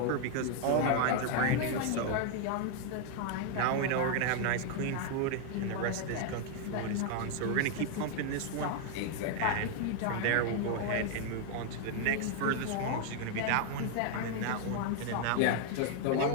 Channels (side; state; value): both; different; correlation 0.00